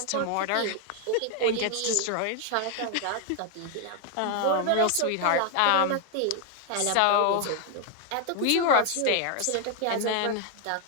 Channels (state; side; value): different; both; correlation 0.00